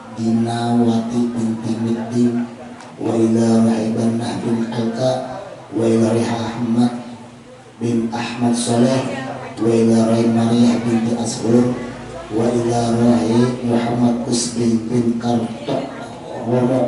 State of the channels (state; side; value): identical; both; correlation 1.00